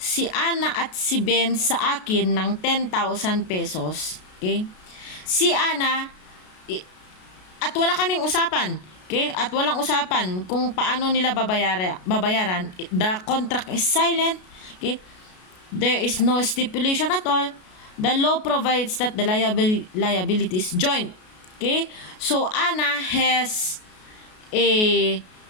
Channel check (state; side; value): late; right; 33 ms